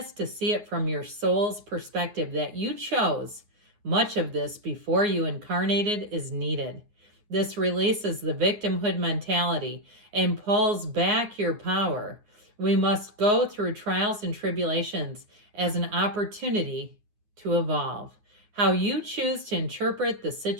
to see it from your soul's perspective that you chose much of this before you incarnated is needed. This releases the victimhood mentality and pulls back your power. We must go through trials and tribulations as an opportunity to evolve. How you choose to interpret the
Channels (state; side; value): late; left; 9.5 ms